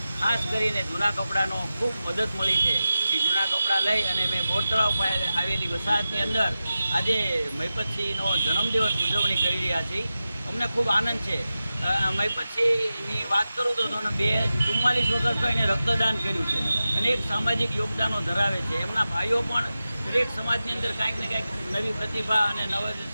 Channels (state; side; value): inverted; both; correlation -0.93